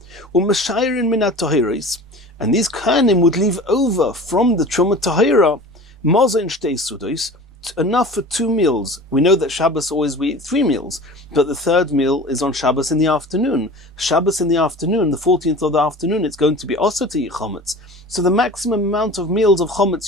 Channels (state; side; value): normal; both; correlation 0.38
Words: U'meshayrin minat tahiros, and these kohanim would leave over from the truma tahira, maza in shtei sudos, enough for 2 meals. We know that Shabbos always we eat 3 meals, but the 3rd meal is on Shabbos in the afternoon. Shabbos in the afternoon, the 14th of the afternoon, it's going to be also to eat chometz. So the maximum amount of meals of chometz